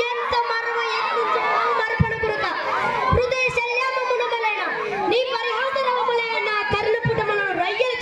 ఎంత మరవ మరపణ పురక హృదయ శల్యామమునమలైన నీ పరిహాసరవములైన కర్ణపుటమును రయ్యలు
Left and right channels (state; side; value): identical; both; correlation 1.00